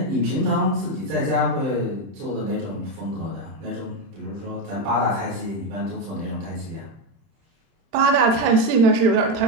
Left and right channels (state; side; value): late; left; 31 ms